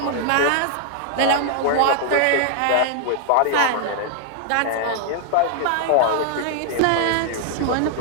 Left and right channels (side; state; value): both; different; correlation 0.00